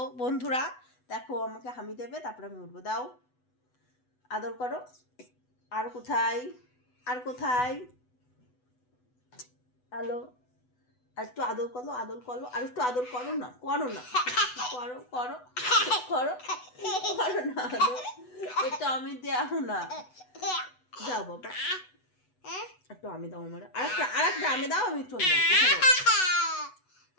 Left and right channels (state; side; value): late; right; 8.0 ms